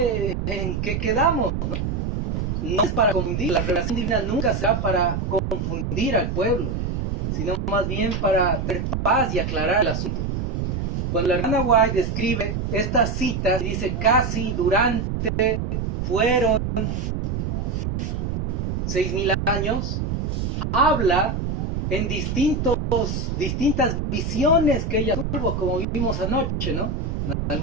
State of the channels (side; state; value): right; noise; rumble, 2 dB below the sound